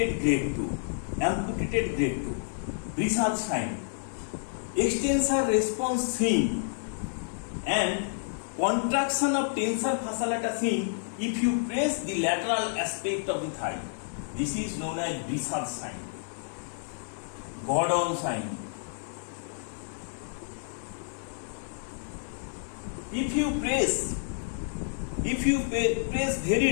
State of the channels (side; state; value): right; silent; digital silence